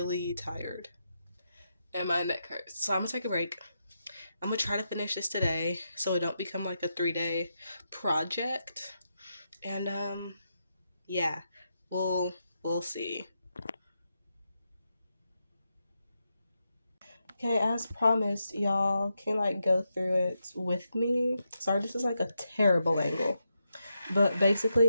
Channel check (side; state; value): both; inverted; correlation -0.85